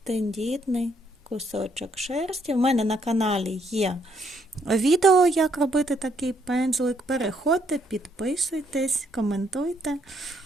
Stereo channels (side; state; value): both; normal; correlation 0.71